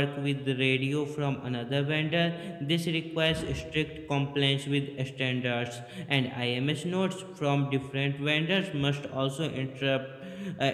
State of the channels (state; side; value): identical; both; correlation 1.00